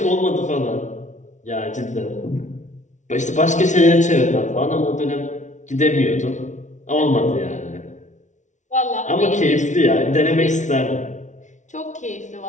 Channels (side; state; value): right; late; 0.36 ms